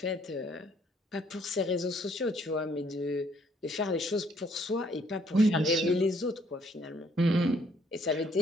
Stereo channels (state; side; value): normal; both; correlation 0.65